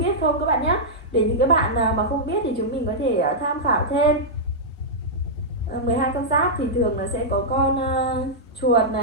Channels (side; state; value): both; normal; correlation -0.09